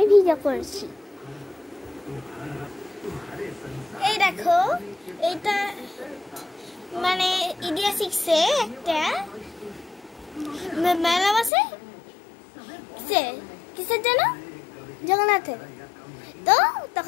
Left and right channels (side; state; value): right; drops out; at 11.5 s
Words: ভিডিও করছি। এই দেখো, এটা মানে ইন্ডিয়া 6-এ একটা মেলা বসে। কিসের জন্য? জগন্নাথের। তো